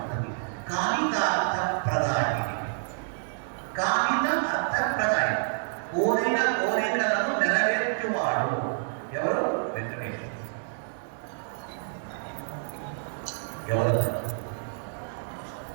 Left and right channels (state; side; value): silent; left; digital silence